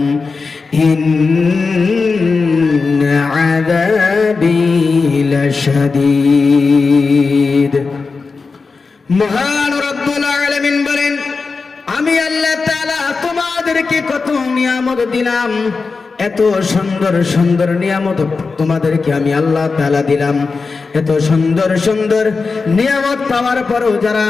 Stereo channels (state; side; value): quieter; right; 4.4 dB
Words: ইন্না আযাবি লাশাদীদ। মহান রব্বুল আলামিন বলেন, আমি আল্লাহ তাআলা তোমাদেরকে কত নিয়ামত দিলাম, এত সুন্দর সুন্দর নিয়ামত তোমাদেরকে আমি আল্লাহ তাআলা দিলাম। এত সুন্দর সুন্দর নিয়ামত পাওয়ার পরও যারা